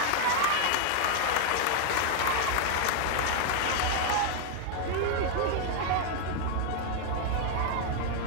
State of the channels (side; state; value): both; different; correlation 0.00